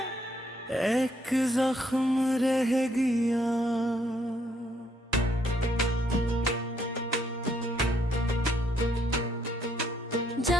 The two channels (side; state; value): both; normal; correlation 0.71